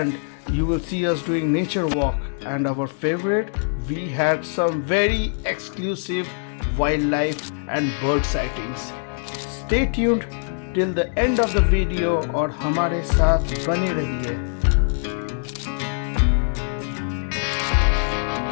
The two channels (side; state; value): right; silent; digital silence